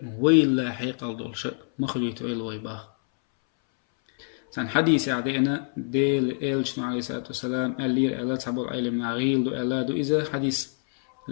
ويلا حيقل دول شأ مخليتو إل ويباخ سان حديث عدينا ديل إلشنو عليه الصلاة والسلام ألير ألا تحبو العلم نغيل دو ألا دو إذا حديث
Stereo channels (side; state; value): right; silent; 61 dB below the other